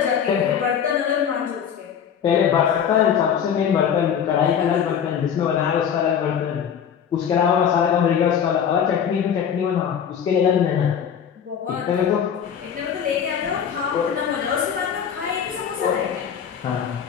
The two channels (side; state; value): right; quieter; 8.1 dB